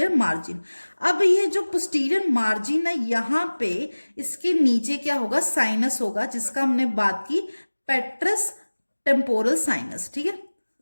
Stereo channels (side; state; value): both; inverted; correlation -1.00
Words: मार्जिन। अब ये जो पोस्टीरियर मार्जिन है, यहाँ पे इसके नीचे क्या होगा, साइनस होगा, जिसका हमने बात की पेट्रस टेम्पोरल साइनस, ठीक है,